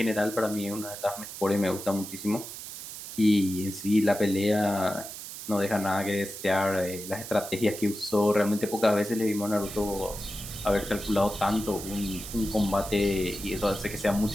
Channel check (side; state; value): right; noise; hiss, 10 dB below the sound